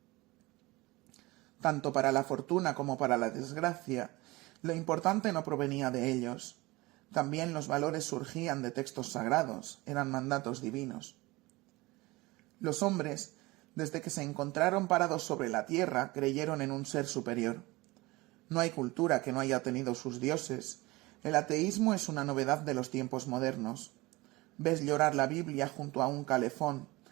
Tanto para la fortuna como para la desgracia, lo importante no provenía de ellos. También los valores surgían de textos sagrados, eran mandatos divinos. Los hombres, desde que se encontraron parados sobre la tierra, creyeron en un ser superior. No hay cultura que no haya tenido sus dioses. El ateísmo es una novedad de los tiempos modernos. Ves llorar la Biblia junto a un calefón.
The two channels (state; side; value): quieter; left; 21.6 dB